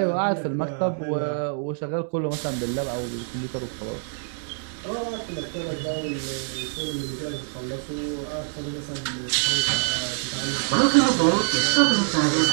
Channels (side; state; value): left; silent; digital silence